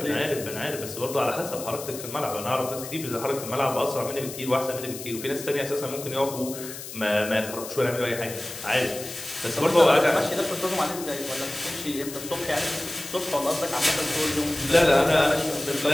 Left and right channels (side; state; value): left; noise; hiss, 11 dB below the sound